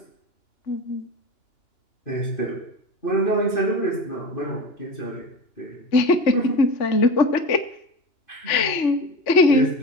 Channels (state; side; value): late; right; 3.4 ms